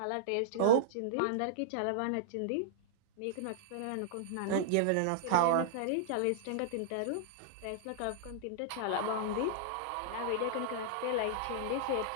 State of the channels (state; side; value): different; both; correlation -0.02